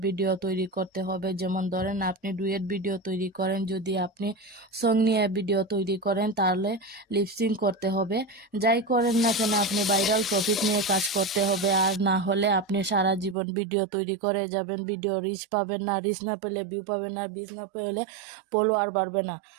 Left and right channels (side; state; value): left; drops out; at 13.4 s